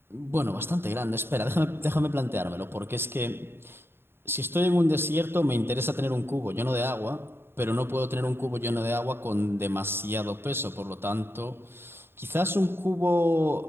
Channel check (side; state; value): left; late; 0.11 ms